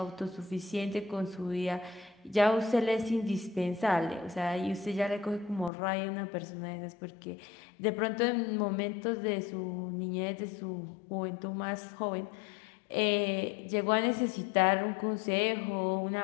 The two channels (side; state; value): right; drops out; at 5.7 s